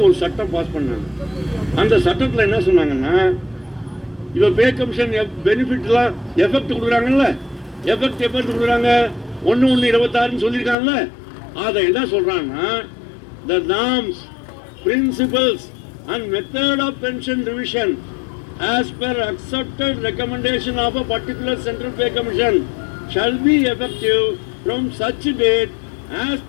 ஒரு சட்டம் பாஸ் பண்ணாங்க. அந்த சட்டத்தில் என்ன சொன்னாங்கன்னா இப்போ பே கமிஷன் பெனிஃபிட்லாம் எஃபெக்ட் கொடுக்குறாங்கல்ல, எஃபெக்ட் எப்போ கொடுக்குறாங்க? 1/1/26 சொல்லியிருக்காங்கல்ல, அதை என்ன சொல்றாங்கன்னா the norms, principles and method of pension revision as per accepted recommendation of a particular central pay commission shall be effective from such date as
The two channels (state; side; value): drops out; right; at 10.8 s